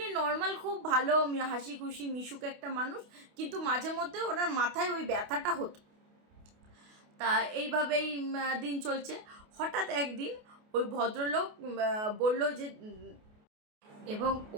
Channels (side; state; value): left; late; 28 ms